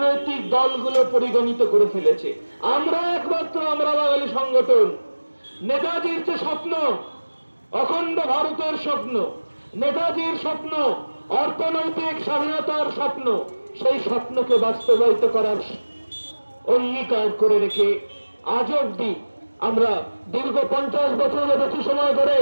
দলগুলো পরিগণিত করে ফেলেছে। আমরা বাঙালি সংগঠন, নেতাজির যে স্বপ্ন, অখণ্ড ভারতের স্বপ্ন, নেতাজির স্বপ্ন, অর্থনৈতিক স্বাধীনতার স্বপ্ন, সেই স্বপ্নকে বাস্তবায়িত করার অঙ্গীকার করে রেখে আজ অব্দি আমরা দীর্ঘ 50 বছরের বেশি সময় ধরে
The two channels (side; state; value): both; inverted; correlation -1.00